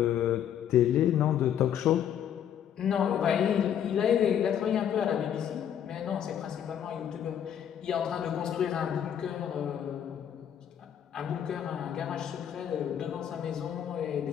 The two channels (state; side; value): quieter; right; 9.4 dB